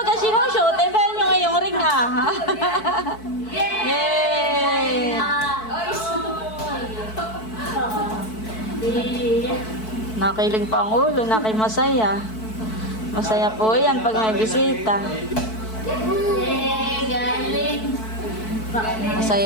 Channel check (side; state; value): right; late; 4.6 ms